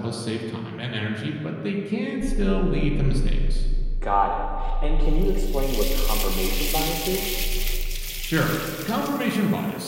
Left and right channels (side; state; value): both; identical; correlation 1.00